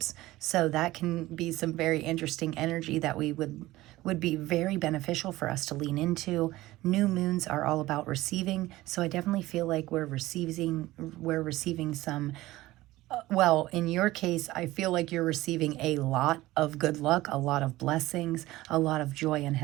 So that can be some very interesting energy that we would be very beneficial for us to lean into. New moons are all about receiving, so I definitely feel like we're receiving some, well, in your case, I feel like you're receiving a lot of good luck, a lot of blessings, a lot of joy and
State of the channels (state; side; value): quieter; left; 17.5 dB